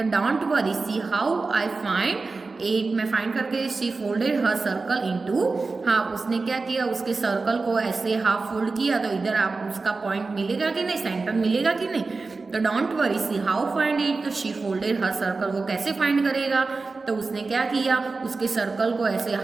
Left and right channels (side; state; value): left; quieter; 3.9 dB